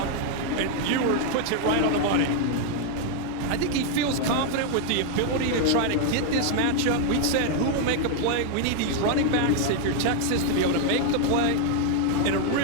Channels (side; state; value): both; different; correlation 0.00